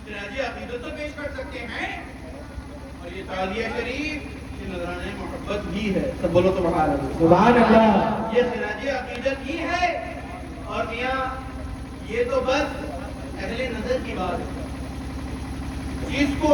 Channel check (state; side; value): identical; both; correlation 1.00